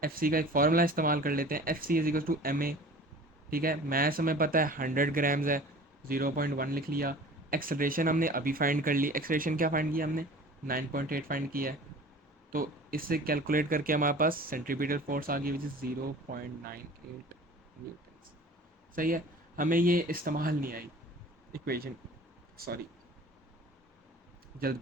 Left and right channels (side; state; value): both; normal; correlation 0.43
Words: एफ सी का एक फार्मूला इस्तेमाल कर लेते हैं, F C is equal to M A. ठीक है, मैथ्स हमें पता है 100 ग्राम्स है, 0.1 लिख लिया। एक्सलेशन हमने अभी फाइंड कर ली, एक्सलेशन क्या फाइंड किया हमने, 9.8 फाइंड किया है। तो इससे कैलकुलेट करके हमारे पास सेंट्रीपिटल फोर्स आ गई, विच इज़ 0.98 न्यूटन। सही है, हमें ये इस्तेमाल नहीं आई इक्वेशन, सॉरी